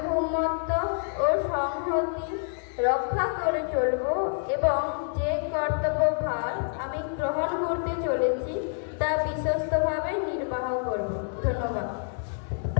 ও সংহতি রক্ষা করে চলব এবং যে কর্তব্যভার আমি গ্রহণ করতে চলেছি তা বিশ্বস্তভাবে নির্বাহ করব। ধন্যবাদ।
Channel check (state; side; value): silent; right; 60 dB below the other